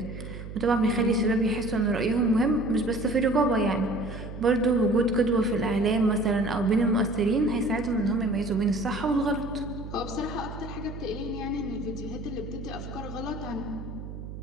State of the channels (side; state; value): right; noise; hum, 10 dB below the sound